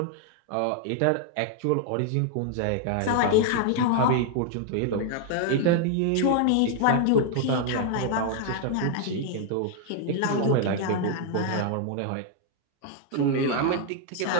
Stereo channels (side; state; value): both; different; correlation 0.00